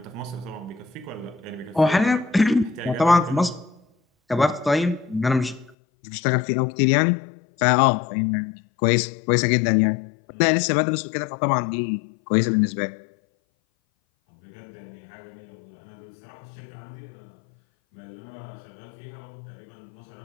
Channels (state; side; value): drops out; right; at 5.8 s